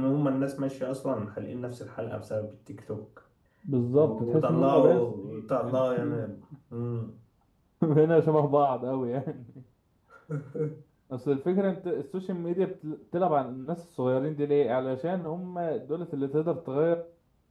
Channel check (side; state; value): both; identical; correlation 1.00